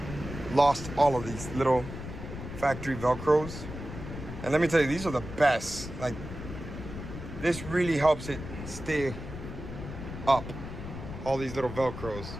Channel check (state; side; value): noise; left; rumble, 9 dB below the sound